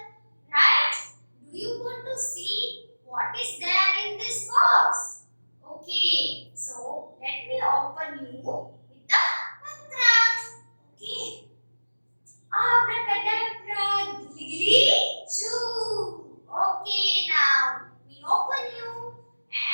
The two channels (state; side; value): inverted; both; correlation -1.00